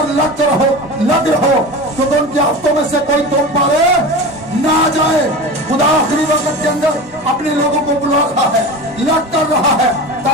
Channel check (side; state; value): both; normal; correlation 0.30